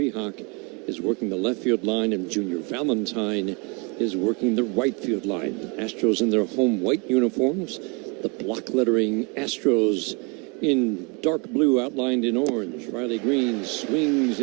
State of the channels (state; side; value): quieter; left; 31.8 dB